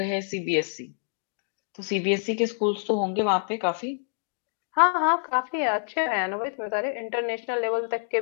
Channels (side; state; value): right; silent; digital silence